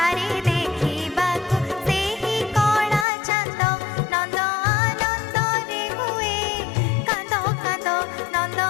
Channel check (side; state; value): right; drops out; at 3.1 s